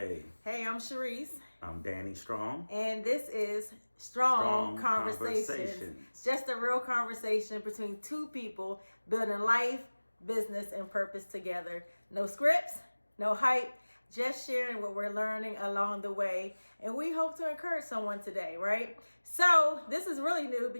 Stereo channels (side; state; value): both; inverted; correlation -1.00